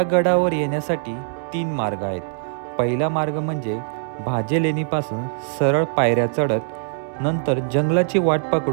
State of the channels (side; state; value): left; silent; 60 dB below the other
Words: गडावर येण्यासाठी 3 मार्ग आहेत. पहिला मार्ग म्हणजे भाजे लेणीपासून सरळ पायऱ्या चढत नंतर जंगलाची वाट